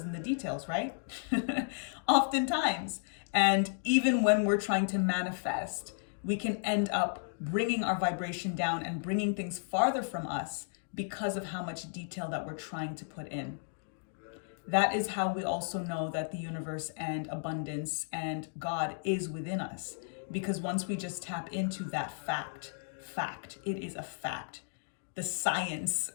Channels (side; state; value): right; silent; digital silence